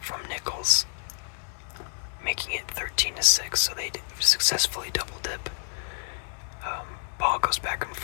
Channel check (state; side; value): silent; right; digital silence